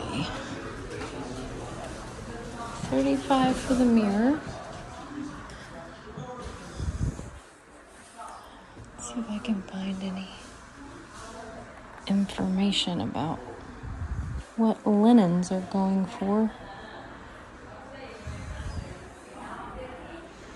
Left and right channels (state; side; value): identical; both; correlation 1.00